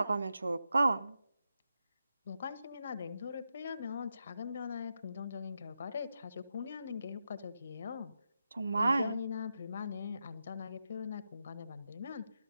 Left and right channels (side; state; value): both; inverted; correlation -0.86